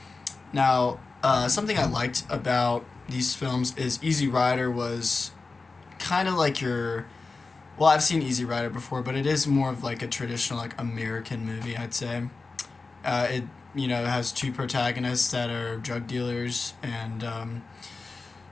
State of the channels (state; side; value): quieter; right; 3.9 dB